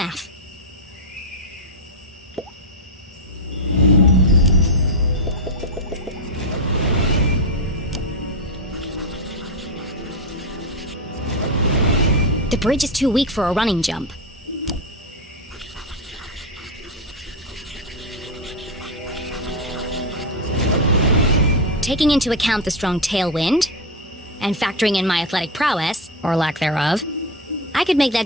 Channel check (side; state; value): both; normal; correlation 0.09